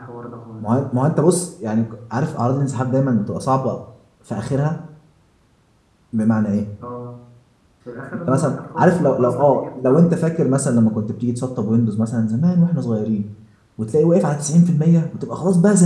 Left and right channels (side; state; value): both; identical; correlation 1.00